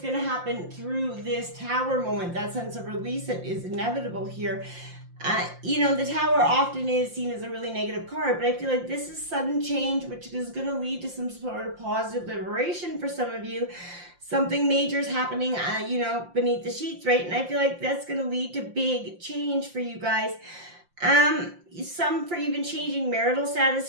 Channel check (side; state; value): left; late; 5.7 ms